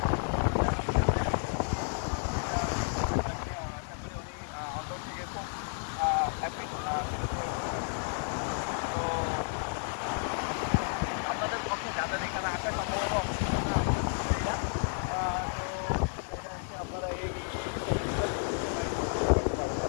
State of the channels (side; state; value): right; silent; 57 dB below the other